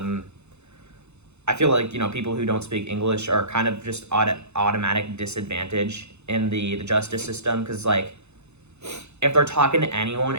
I feel like, people who don't speak English are kind of just automatic disadvantage in the justice system, because, like, if they're talking to anyone,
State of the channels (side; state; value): left; late; 0.81 ms